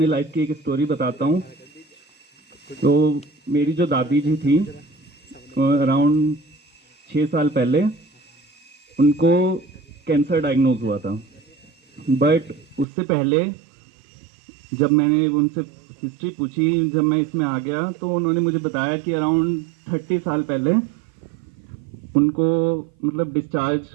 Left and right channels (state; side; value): drops out; left; at 12.9 s